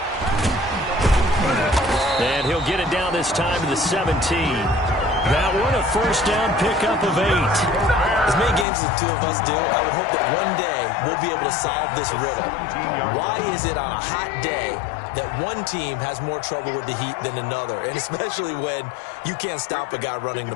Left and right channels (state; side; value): drops out; right; at 8.7 s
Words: And he'll get it down this time to the 17. That one, a first down pickup of 8. As many games as the two of us do, I would hope that one day we'll be able to solve this riddle. Why is it on a hot day that one team has more trouble with the heat than another, and especially when you can't stop a guy running the